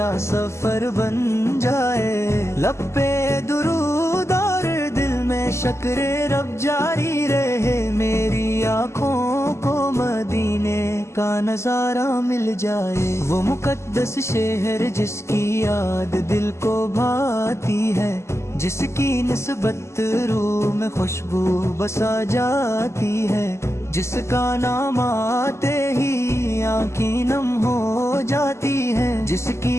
سفر بن جائے، لب پہ درود اور دل میں شکر رب جاری رہے، میری آنکھوں کو مدینے کا نظارہ مل جائے۔ وہ مقدس شہر جس کی یاد دل کو بھاتی ہے، جس کی نسبت روح میں خوشبو بسا جاتی ہے، جس کا نام آتے ہی آنکھیں نم ہو جاتی ہیں، جس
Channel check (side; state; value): right; late; 0.13 ms